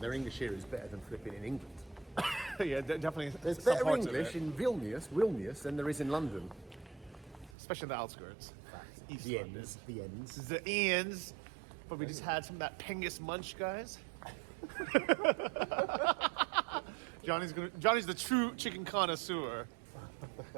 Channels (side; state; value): left; drops out; at 7.6 s